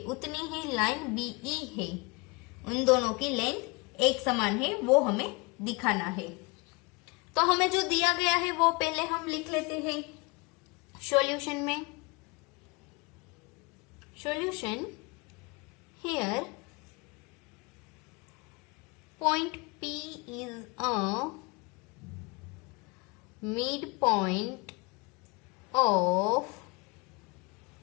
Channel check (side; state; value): right; quieter; 27.5 dB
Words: उतनी ही लाइन बी ई है, उन दोनों की लेंथ एक समान है, वो हमें दिखाना है। तो हमें जो दिया गया है वो पहले हम लिख लेते हैं सॉल्यूशन में। Solution here point P is a midpoint of